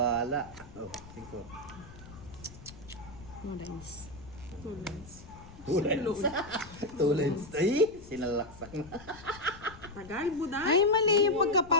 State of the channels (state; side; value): noise; left; rumble, 18 dB below the sound